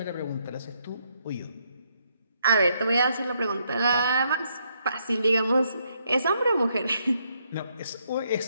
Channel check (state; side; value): inverted; both; correlation -0.75